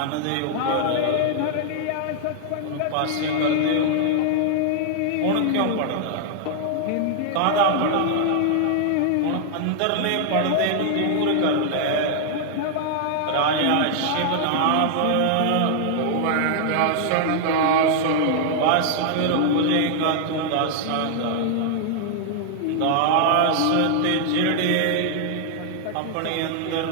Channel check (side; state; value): both; different; correlation 0.00